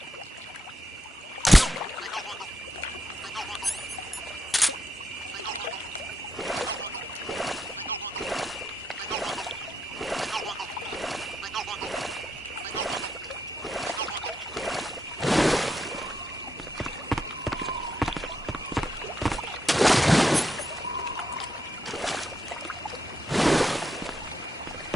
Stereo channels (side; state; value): both; normal; correlation 0.81